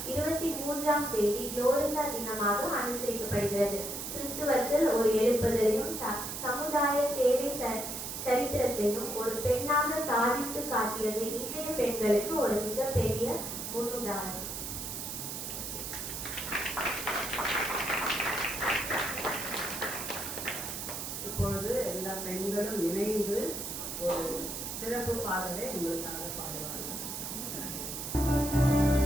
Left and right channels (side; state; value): right; noise; hiss, 6 dB below the sound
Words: 23ஆம் தேதி குளோரிண்டா தினமாக அனுசரிக்கப்படுகிறது. கிறிஸ்துவத்தில் ஒரு எழுப்புதலையும் சமுதாய சேவை சரித்திரத்தையும் ஒரு பெண்ணாக சாதித்து காட்டியது இன்றைய பெண்களுக்கு ஒரு மிகப்பெரிய முன்னுதாரணம். இப்பொழுது எல்லா பெண்களும் இணைந்து ஒரு சிறப்பு பாடலை உங்களுக்காக பாடுவார்கள்.